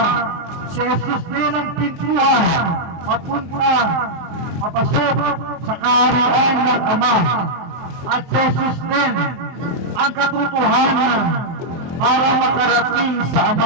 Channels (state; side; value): late; left; 23 ms